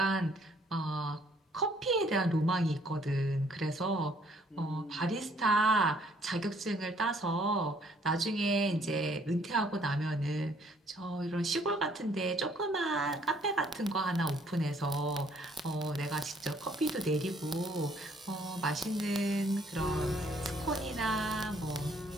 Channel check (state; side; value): normal; both; correlation 0.63